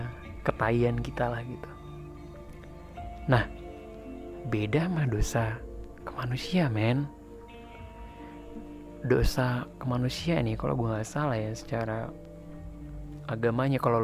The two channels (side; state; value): both; identical; correlation 1.00